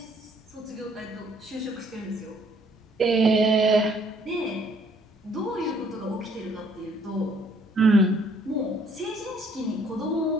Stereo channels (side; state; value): both; normal; correlation 0.63